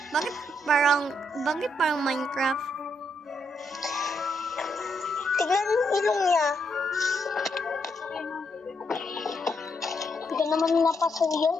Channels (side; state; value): both; normal; correlation 0.78